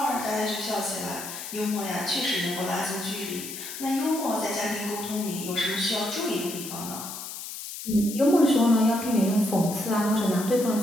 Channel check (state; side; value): noise; left; hiss, 9 dB below the sound